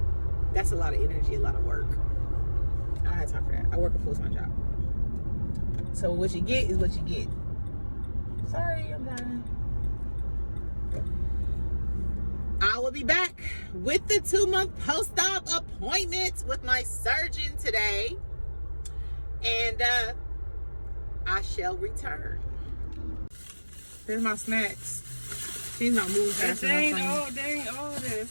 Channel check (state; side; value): inverted; both; correlation -1.00